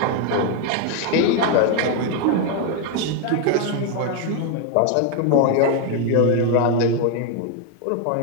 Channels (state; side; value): different; both; correlation 0.01